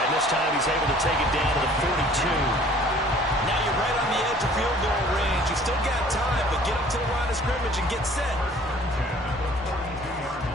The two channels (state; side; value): normal; both; correlation 0.53